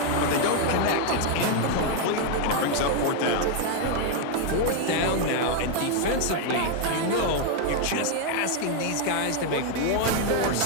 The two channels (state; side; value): different; both; correlation 0.00